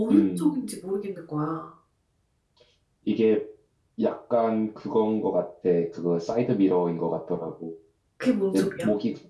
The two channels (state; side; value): identical; both; correlation 1.00